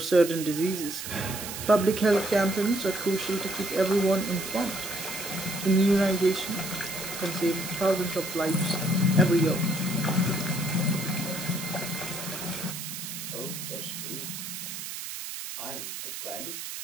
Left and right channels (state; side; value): noise; right; hiss, 8 dB below the sound